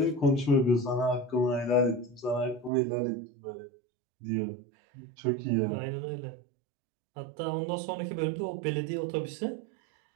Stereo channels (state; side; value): drops out; left; at 2.7 s